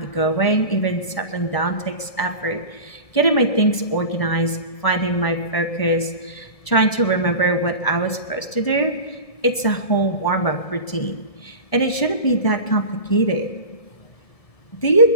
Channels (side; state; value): right; late; 1.0 ms